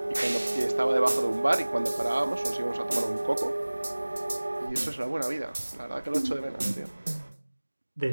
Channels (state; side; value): inverted; both; correlation -1.00